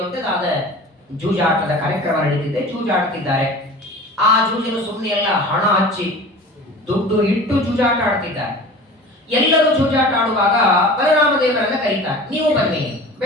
ಜೂಜಾಟದ ಕಾರ್ಯಕ್ರಮ ನಡೀತಿದೆ, ಜೂಜಾಡ್ತಿದ್ದಾರೆ. ಆ ಜೂಜಿನ ಸುಮ್ಮನೆ ಎಲ್ಲ ಹಣ ಹಚ್ಚಿ ದುಡ್ಡು ಇಟ್ಟು ಜೂಜಾಟ ಆಡ್ತಿದ್ದಾರೆ. ಎಲ್ಲರೂ ಜೂಜಾಟ ಆಡುವಾಗ ಬಲರಾಮ ದೇವರನ್ನ ಕರೀತಾರೆ, ನೀವು ಬನ್ನಿ.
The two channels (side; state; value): both; normal; correlation 0.39